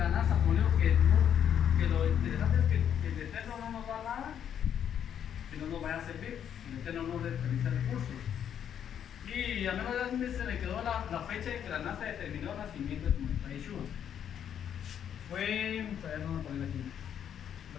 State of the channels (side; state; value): right; quieter; 9.1 dB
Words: NASA pone que lo interesante es que el Eterno no nos da nada que no nos vaya a servir, el Eterno no desperdicia recursos. Y a menos de se le quedó la fecha en que la NASA determinó el nacimiento de su majestad Yeshua.